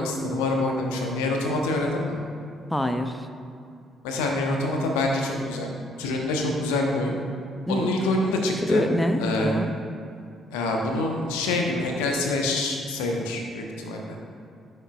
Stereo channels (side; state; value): both; normal; correlation 0.62